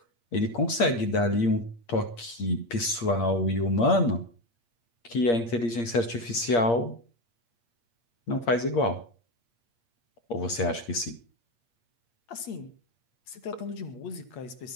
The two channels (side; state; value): right; late; 8.6 ms